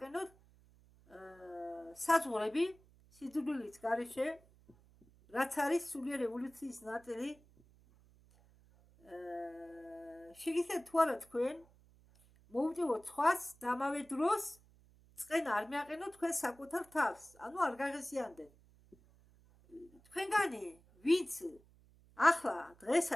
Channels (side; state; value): right; noise; hum, 27 dB below the sound